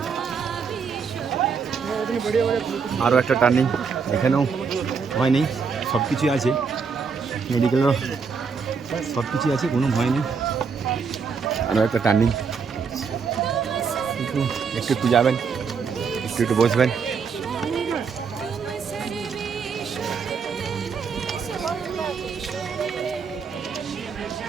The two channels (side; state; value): left; quieter; 5.6 dB